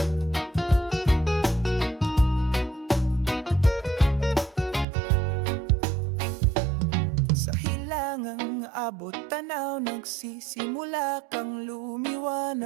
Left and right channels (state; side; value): drops out; left; at 4.9 s